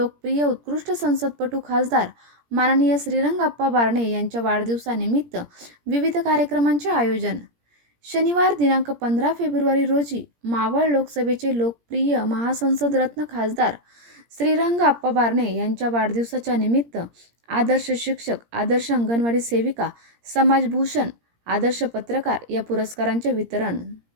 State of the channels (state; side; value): late; left; 17 ms